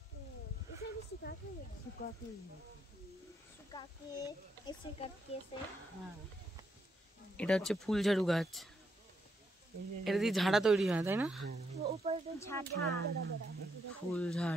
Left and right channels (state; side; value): normal; both; correlation 0.78